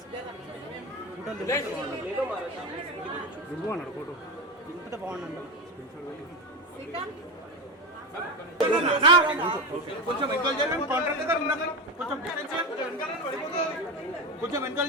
అన్నాడు ఫోటో ఇంత బాగుందండి కొంచెం వెనకాల చేయండి కాంట్రాక్టర్ ఉన్నాక కొంచెం వెనకాల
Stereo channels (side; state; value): both; normal; correlation 0.19